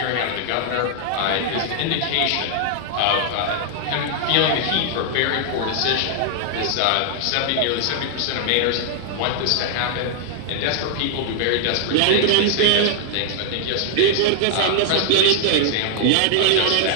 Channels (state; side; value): different; both; correlation 0.00